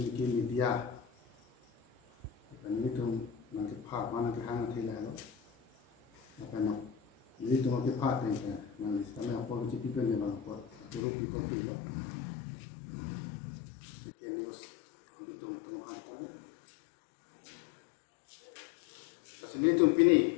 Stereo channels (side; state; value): right; drops out; at 11.0 s